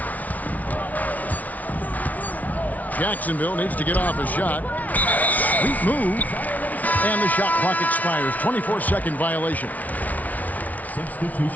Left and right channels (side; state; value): right; late; 0.073 ms